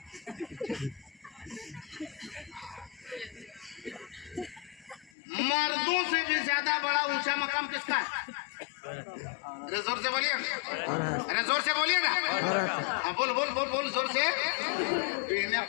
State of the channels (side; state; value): right; drops out; at 5.1 s